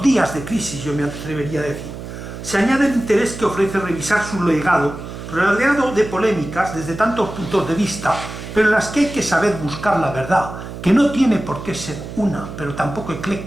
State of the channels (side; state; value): right; noise; hum, 10 dB below the sound